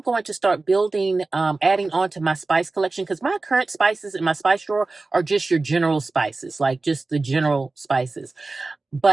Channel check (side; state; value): left; quieter; 3.5 dB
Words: going to start building, adding on to my spice collection, because my current spices in my spice drawer are just your general spices, like just the general spices.